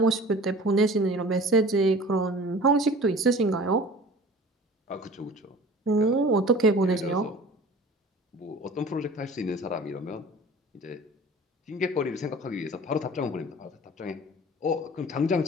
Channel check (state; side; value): normal; both; correlation 0.43